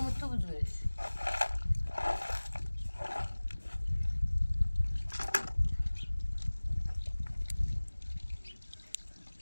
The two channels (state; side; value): inverted; both; correlation -1.00